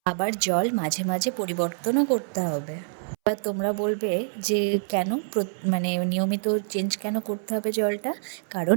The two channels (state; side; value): silent; left; 61 dB below the other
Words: আবার জল মাঝে মাঝে পরিবর্তনও করতে হবে। এবার তোমরা বলবে যে কেন নিয়মিত চেঞ্জ কেন করতে হবে জলটা? কারণ